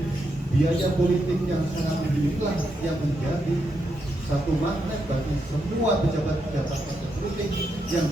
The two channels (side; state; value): both; normal; correlation 0.82